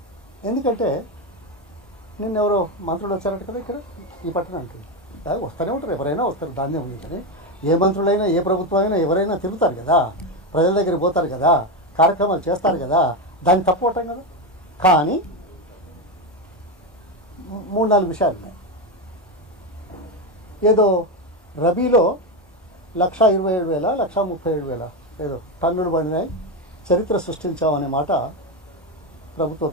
ఎందుకంటే నిన్న ఎవరో మంత్రులు వచ్చారంట కదా ఇక్కడ ఈ పట్టణానికి. వస్తూనే ఉంటారు, ఎవరైనా వస్తారు, దాన్నే ఉంది. కానీ ఏ మంత్రులైనా ఏ ప్రభుత్వం అయినా ఎవరైనా తిరుగుతారు కదా, ప్రజల దగ్గరికి పోతారు కదా, కార్యక్రమాలు చేస్తారు కదా, దాన్ని తప్పుకోవటం కదా. కానీ 3-4 విషయాలు ఉన్నాయి. ఏదో రబీలో 1,27,000 1,37,000 ఏదో టన్నులు పడినాయి, చరిత్ర సృష్టించామనే మాట ప్రభుత్వ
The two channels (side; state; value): both; normal; correlation 0.12